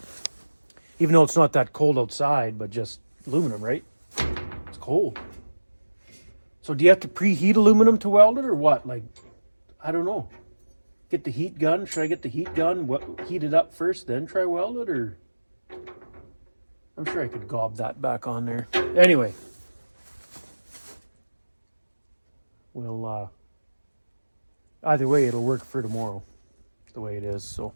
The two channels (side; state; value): both; inverted; correlation -1.00